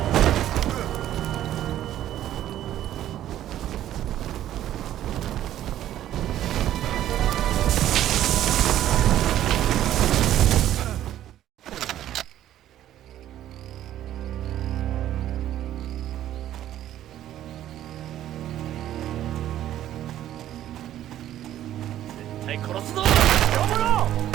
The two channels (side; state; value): left; quieter; 12.3 dB